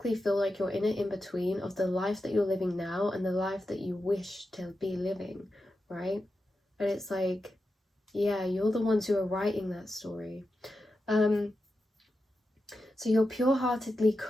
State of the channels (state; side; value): normal; both; correlation 0.90